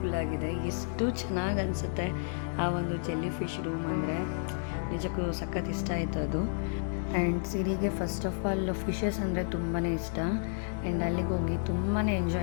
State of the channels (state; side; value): silent; right; digital silence